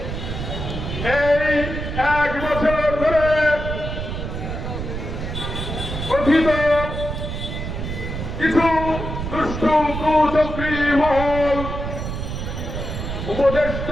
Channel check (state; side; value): noise; right; rumble, 5 dB below the sound